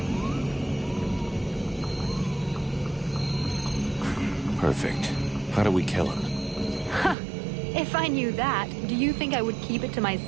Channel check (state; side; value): drops out; left; at 7.2 s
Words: Perfect. How do we kill him? If I knew that, do you think I would keep it to